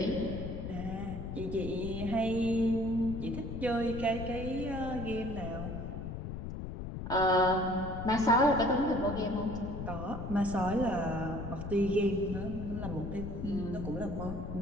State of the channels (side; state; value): left; noise; rumble, 6 dB below the sound